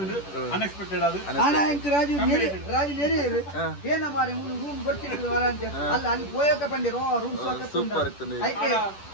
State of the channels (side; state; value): right; late; 10 ms